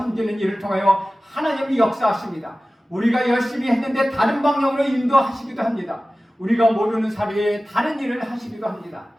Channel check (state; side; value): normal; both; correlation 0.96